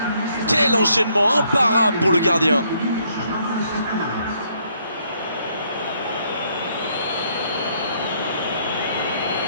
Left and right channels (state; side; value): inverted; both; correlation -0.70